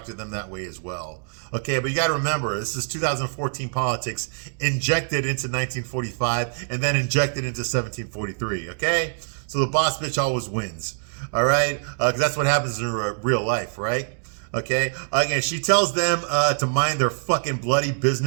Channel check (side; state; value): left; silent; 62 dB below the other